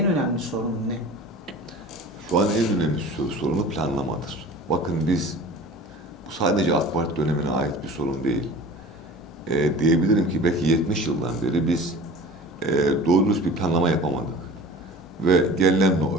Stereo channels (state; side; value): normal; both; correlation 0.40